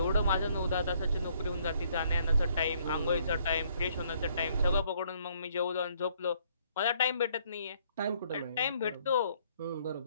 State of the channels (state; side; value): inverted; both; correlation -0.65